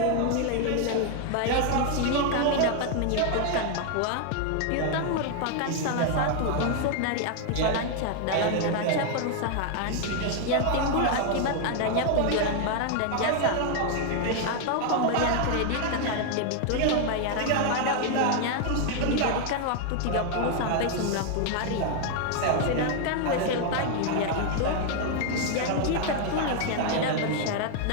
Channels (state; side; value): different; both; correlation 0.00